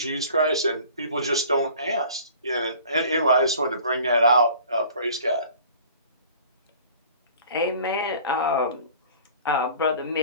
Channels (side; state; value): both; inverted; correlation -0.47